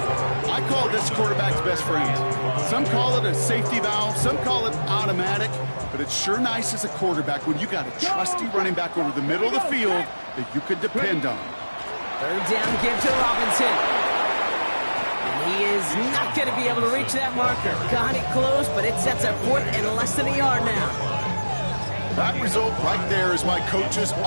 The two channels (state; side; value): inverted; both; correlation -1.00